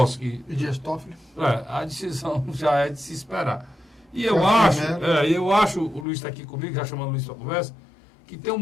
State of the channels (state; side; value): drops out; right; at 6.1 s